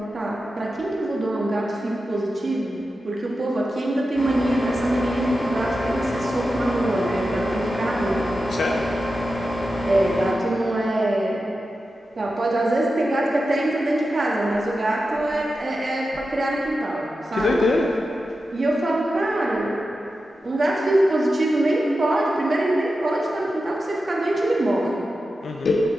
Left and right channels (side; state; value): both; normal; correlation 0.91